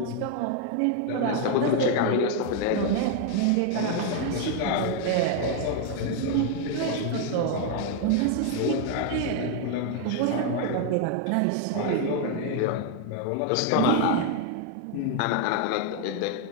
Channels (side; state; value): both; different; correlation 0.01